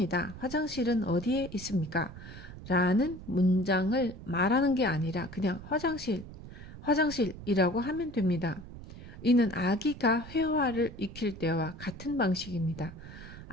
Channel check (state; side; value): noise; right; rumble, 14 dB below the sound